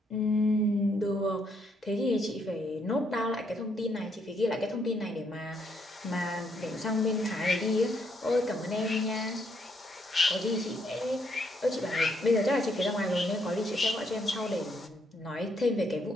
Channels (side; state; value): both; normal; correlation 0.74